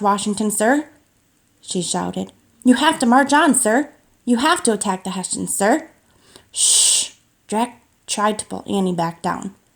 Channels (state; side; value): identical; both; correlation 1.00